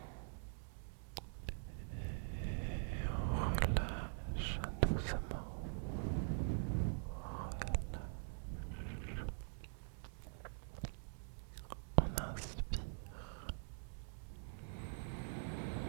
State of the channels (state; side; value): silent; left; digital silence